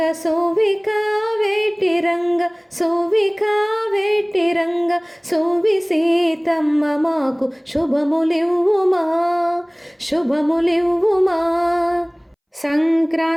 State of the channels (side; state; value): both; identical; correlation 1.00